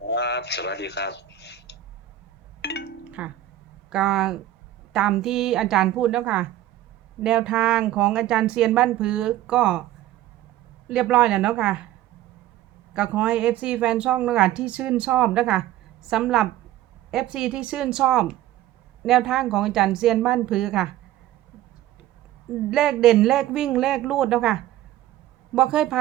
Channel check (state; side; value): quieter; left; 13.1 dB